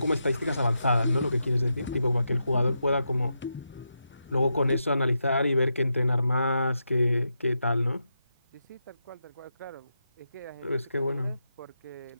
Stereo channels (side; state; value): both; inverted; correlation -0.86